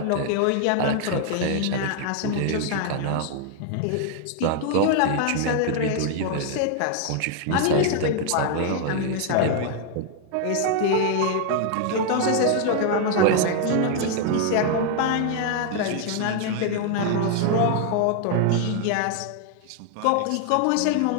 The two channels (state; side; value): different; both; correlation 0.00